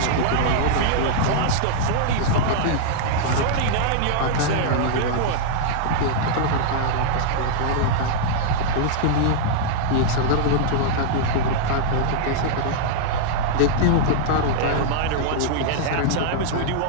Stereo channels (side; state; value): both; different; correlation -0.01